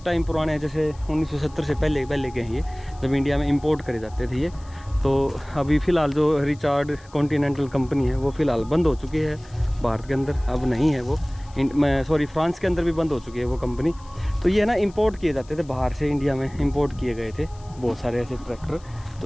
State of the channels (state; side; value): noise; left; hiss, 27 dB below the sound